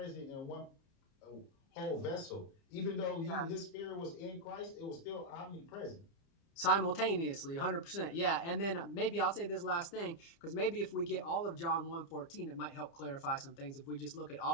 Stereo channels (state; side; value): late; right; 30 ms